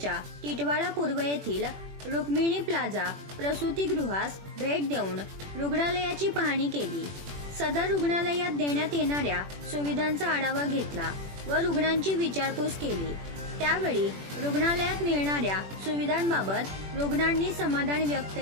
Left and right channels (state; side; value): late; left; 21 ms